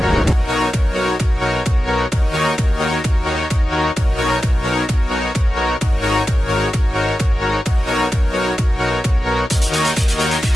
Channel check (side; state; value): both; normal; correlation 0.93